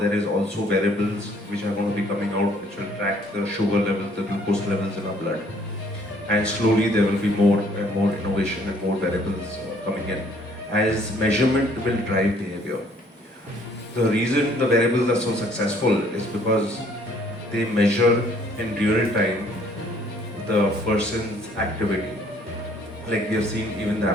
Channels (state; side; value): normal; both; correlation 0.61